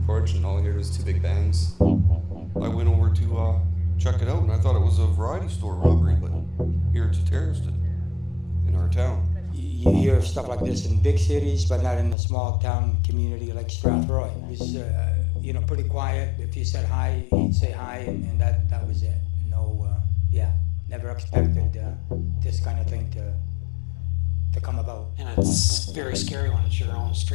porch, and all I heard was 2 big bangs. I went over to check it out, and I thought it was a variety store robbery, but here it's a terrorist in our town. You hear stuff like this in big cities, but not in a small town community like Strathroy. It was, pretty quiet. If you said hi, he'd say hi, and that was it. No, never expected this kind of thing to come about. And it's very scary when it's your own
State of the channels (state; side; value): drops out; right; at 12.2 s